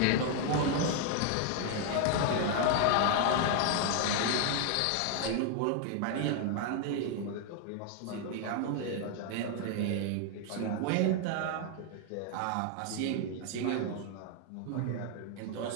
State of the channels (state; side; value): different; both; correlation 0.00